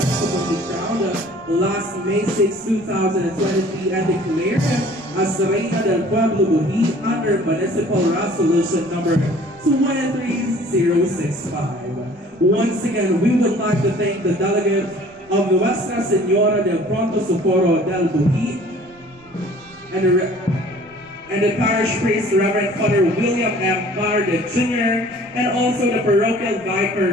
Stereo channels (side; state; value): right; noise; rumble, 29 dB below the sound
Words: crowned last May 6, 2023 and declared as the Reina del Pueblo Buhi under Municipal Resolution number 23065. Once again, we would like to thank the delegates of Nuestra Señora del Pronto Socorro del Buhi and the parish priest, Reverend Father William M. Carde Jr., and also the parochial vicar,